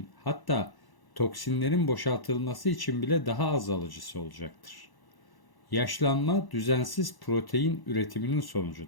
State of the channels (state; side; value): late; right; 1.0 ms